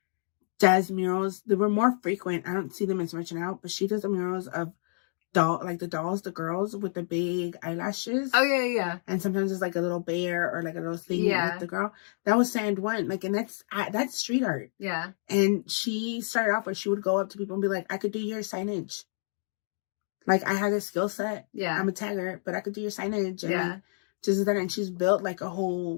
does murals. They were more frequent. I don't see them as much now, but she does the murals of the girls with the big eyelashes. Oh yeah. And sometimes it's like a little bear or like a little thing with the girl. That was Sand One. Like, and that's street art. Yeah. And she started off where she would go up to people and be like, I could do your signage. Like I had a skill set. Yeah. I'm a tagger, but I could do your signage. And like, just that, and she's built like a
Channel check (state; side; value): silent; right; digital silence